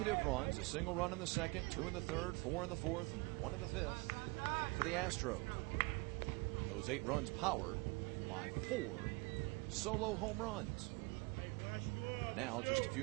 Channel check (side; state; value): left; quieter; 27.2 dB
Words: runs, a single run in the second, 2 in the third, 4 in the fourth, and 1 in the fifth for the Astros. Those 8 runs powered by 4 solo home runs. And now, just a